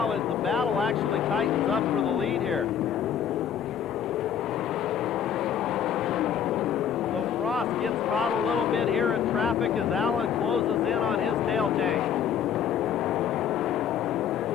as the battle actually tightens up for the lead here. Frost gets caught a little bit here in traffic as Allen closes in on his tail tank.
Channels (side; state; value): right; quieter; 8.5 dB